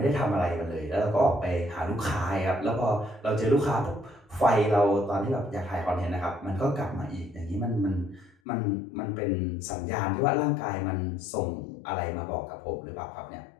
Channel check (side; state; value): right; drops out; at 8.3 s